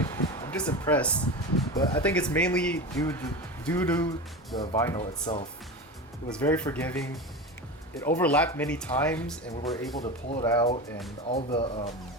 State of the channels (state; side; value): normal; both; correlation 0.25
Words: impressed. But I think it's mainly due to the vinyl itself. It was very forgiving. It overlapped many times, and we were able to pull it out. And all the